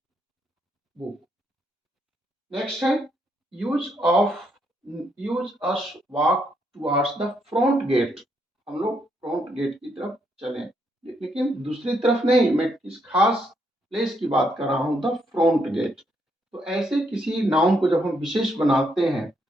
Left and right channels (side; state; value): both; normal; correlation 0.76